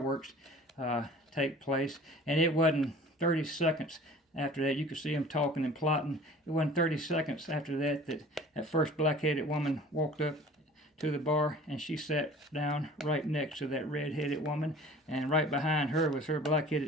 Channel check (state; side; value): normal; both; correlation 0.45